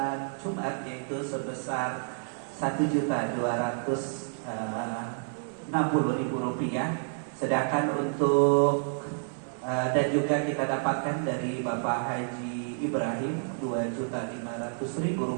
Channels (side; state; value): left; silent; 58 dB below the other